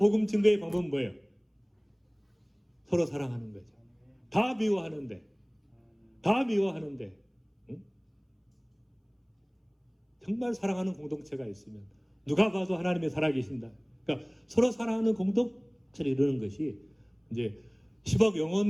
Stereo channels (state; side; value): identical; both; correlation 1.00